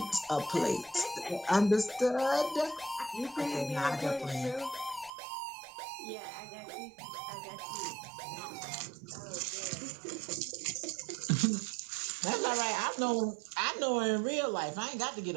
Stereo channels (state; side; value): drops out; left; at 5.1 s